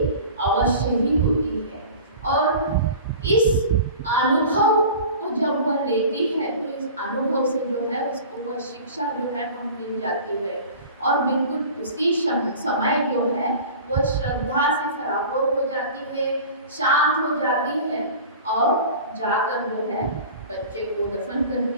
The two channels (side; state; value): both; inverted; correlation -0.39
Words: अवश्य ही होती है। और इस अनुभव को जब वह लेती है तो इस अनुभव से जो है उसको वह शिक्षा जो है वह मिल जाती है और बिल्कुल उसी समय जो है वह श्रद्धा से सराबोर हो जाती है, शांत हो जाती है और जाकर जो है बच्चे को दफन